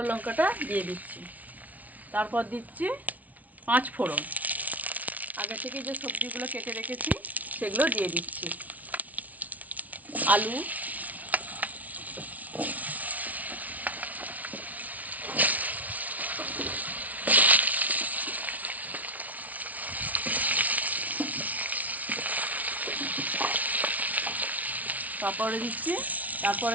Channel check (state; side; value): late; left; 0.072 ms